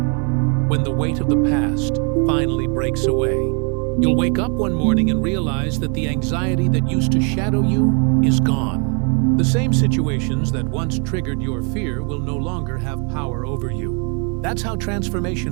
when the weight of the past finally breaks away. You'll wake up one morning and realize that the anxiety that used to shadow you is gone. The same situations that once triggered your fear will no longer have power over you. That's how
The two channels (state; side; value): quieter; left; 37.5 dB